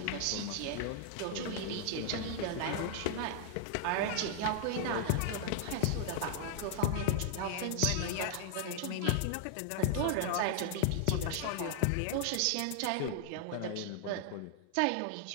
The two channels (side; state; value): both; different; correlation 0.00